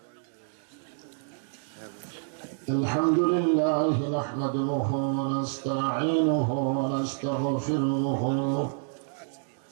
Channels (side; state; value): left; silent; digital silence